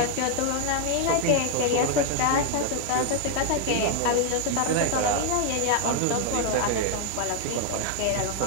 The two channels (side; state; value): both; different; correlation 0.00